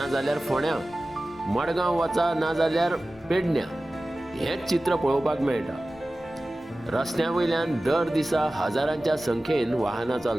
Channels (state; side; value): normal; both; correlation 0.96